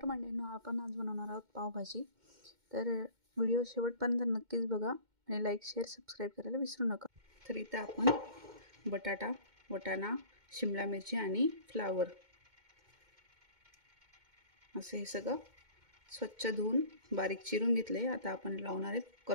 मंडळींनो, आपण आज बनवणार आहोत पावभाजी. तर व्हिडिओ शेवटपर्यंत नक्कीच बघा आणि लाईक, शेअर, सबस्क्राईब करायला विसरू नका. तर इथं आपण बटाटा, वाटाणा, शिमला मिरची आणि फ्लावर असं हे सगळं स्वच्छ धुवून बारीक चिरून घेतले. आता आपण लावणार आहे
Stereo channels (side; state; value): left; late; 2.1 ms